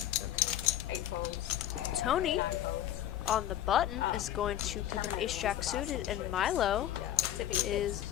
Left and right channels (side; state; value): right; quieter; 12.3 dB